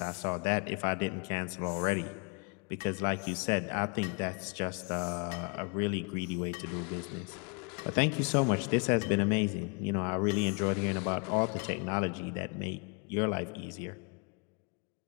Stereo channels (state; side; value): quieter; right; 35.9 dB